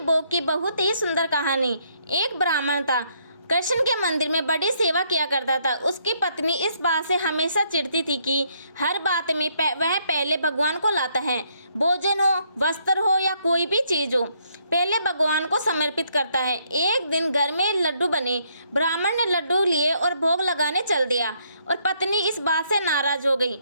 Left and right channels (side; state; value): both; inverted; correlation -0.71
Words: की बहुत ही सुंदर कहानी। एक ब्राह्मण था, कृष्ण के मंदिर में बड़ी सेवा किया करता था। उसकी पत्नी इस बात से हमेशा चिढ़ती थी कि हर बात में वह पहले भगवान को लाता है। भोजन हो, वस्त्र हो या कोई भी चीज़ हो, पहले भगवान को समर्पित करता है। एक दिन घर में लड्डू बने, ब्राह्मण ने लड्डू लिए और भोग लगाने चल दिया। और पत्नी इस बात से नाराज हो गई